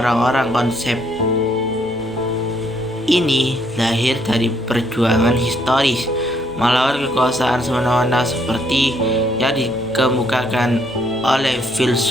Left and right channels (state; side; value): normal; both; correlation 0.69